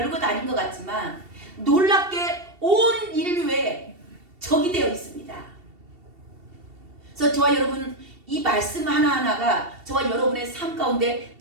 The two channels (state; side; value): late; left; 2.7 ms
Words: 아닌 것 같지만 놀랍게 온 인류에 적이 되어 있습니다. 그래서 저와 여러분 이 말씀 하나하나가 저와 여러분의 삶 가운데